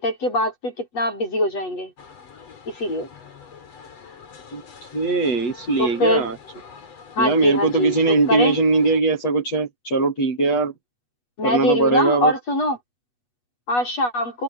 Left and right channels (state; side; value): late; right; 8.2 ms